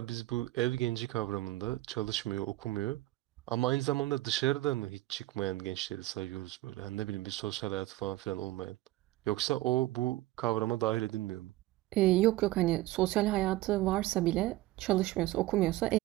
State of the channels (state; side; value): quieter; left; 17.4 dB